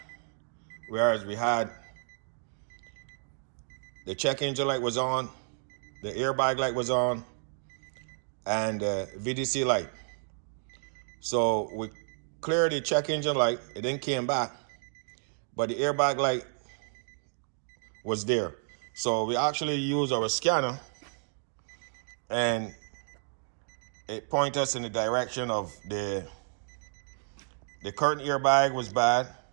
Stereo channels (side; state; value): left; silent; digital silence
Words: whereas we had the check engine light was on, the airbag light was on, and the VDC light. So we cleared the check engine light, it then came back, but the airbag light was there. So we actually used our scanner and it pointed us in the direction of the curtain airbag was bad